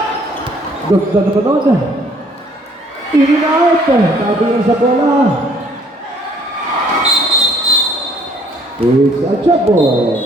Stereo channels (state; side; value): normal; both; correlation 0.61